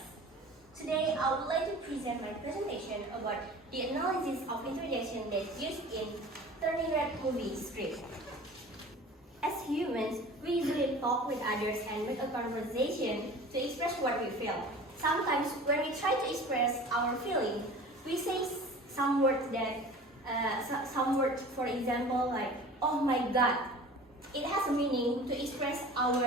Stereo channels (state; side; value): normal; both; correlation 0.41